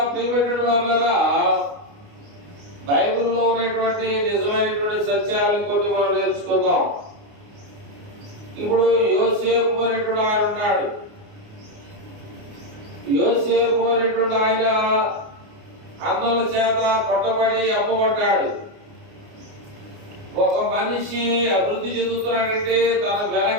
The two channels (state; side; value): late; left; 29 ms